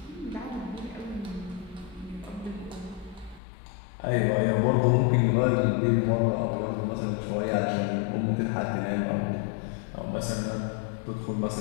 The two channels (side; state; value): right; drops out; at 3.4 s